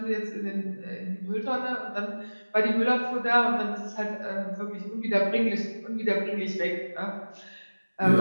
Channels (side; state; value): both; inverted; correlation -1.00